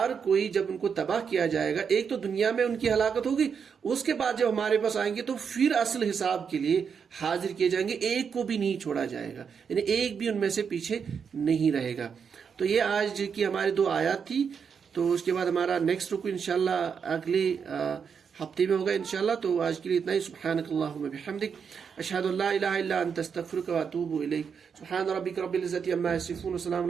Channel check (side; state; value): left; quieter; 6.6 dB